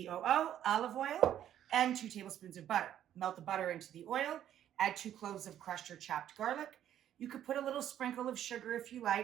olive oil, and 2 tablespoons of butter. Melt the butter into the oil, add 2 cloves of crushed or chopped garlic. You could put a little sprinkle of sugar if you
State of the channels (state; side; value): quieter; left; 11.0 dB